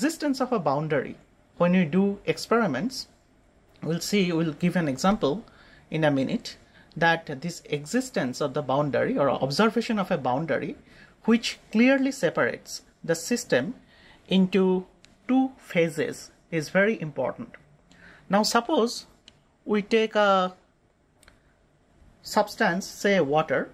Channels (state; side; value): identical; both; correlation 1.00